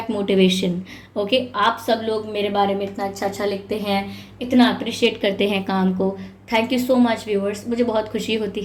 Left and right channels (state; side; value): identical; both; correlation 1.00